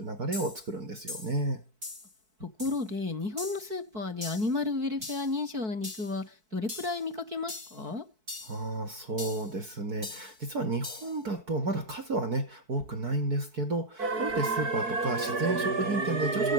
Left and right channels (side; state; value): left; late; 4.6 ms